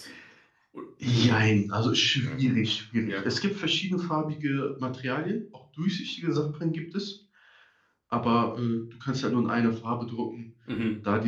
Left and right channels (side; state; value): both; identical; correlation 1.00